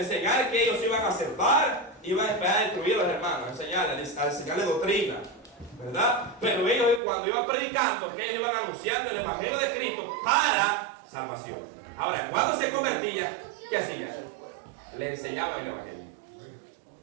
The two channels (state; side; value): drops out; left; at 7.0 s